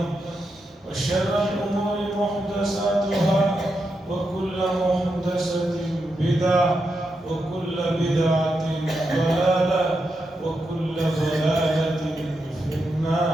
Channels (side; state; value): both; normal; correlation 0.85